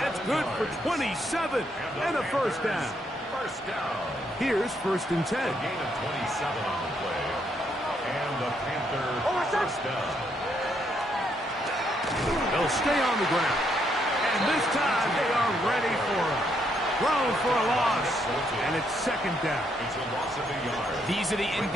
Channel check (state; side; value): normal; both; correlation 0.74